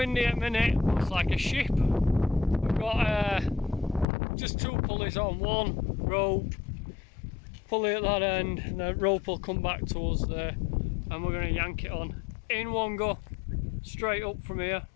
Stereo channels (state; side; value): drops out; right; at 4.0 s